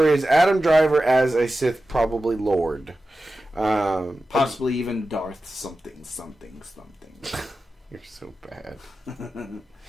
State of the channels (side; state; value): both; normal; correlation 0.93